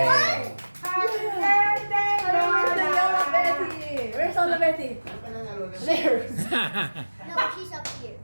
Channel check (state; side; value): inverted; both; correlation -1.00